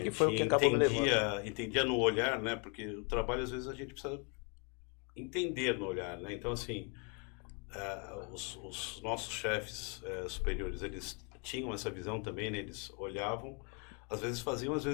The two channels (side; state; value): right; quieter; 36.0 dB